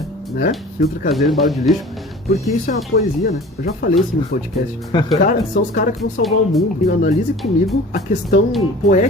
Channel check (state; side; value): normal; both; correlation 0.43